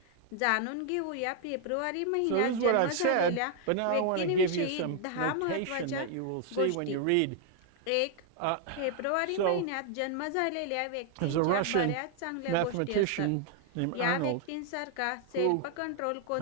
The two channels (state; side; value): different; both; correlation 0.00